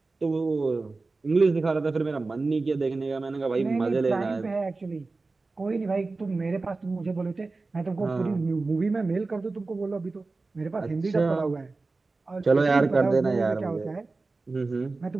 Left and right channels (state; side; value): quieter; left; 3.6 dB